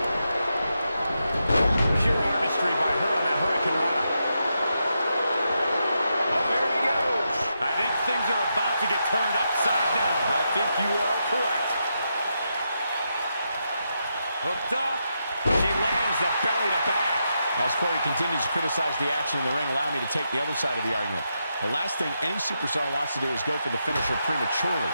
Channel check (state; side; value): inverted; both; correlation -0.84